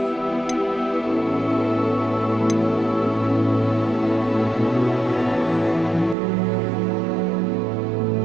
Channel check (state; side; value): drops out; left; at 6.2 s